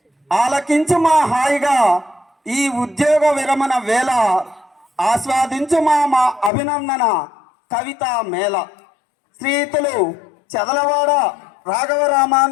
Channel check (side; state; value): right; drops out; at 6.5 s